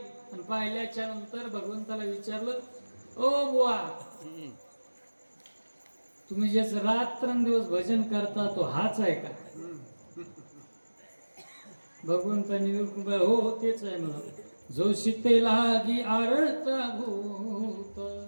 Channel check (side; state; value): both; inverted; correlation -1.00